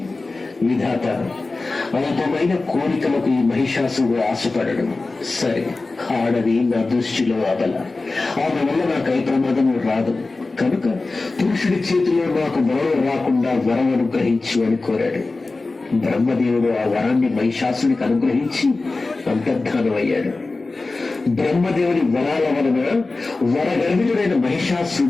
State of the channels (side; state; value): right; quieter; 3.5 dB